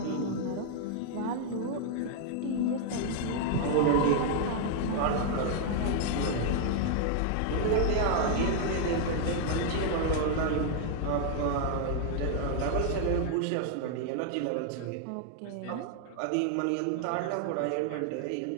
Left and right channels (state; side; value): different; both; correlation 0.00